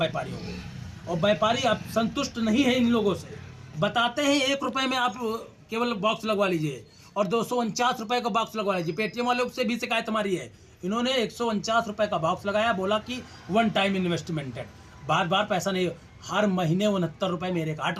को। और व्यापारी अब संतुष्ट नहीं है इन लोगों से। बताते हैं 1 रुपए में आप केवल बॉक्स लगवा लीजिए और 249 रुपए का बॉक्स लगवा लीजिए। पेटीएम वालों से भी शिकायत हमारी है, इन्होंने 149 रुपए का बॉक्स लगाया, बोला कि 1 टाइम इन्वेस्टमेंट है, बार बार पैसा नहीं। हर महीने 69 रुपए मेरे काट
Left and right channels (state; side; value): identical; both; correlation 1.00